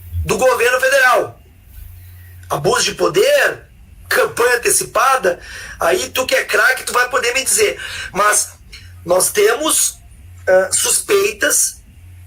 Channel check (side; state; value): both; identical; correlation 1.00